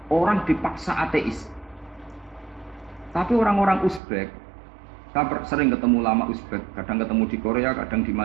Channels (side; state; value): left; drops out; at 4.0 s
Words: Orang dipaksa ateis. Tapi orang-orang Uzbek, saya sering ketemu lama Uzbek, kadang ketemu di Korea, kadang di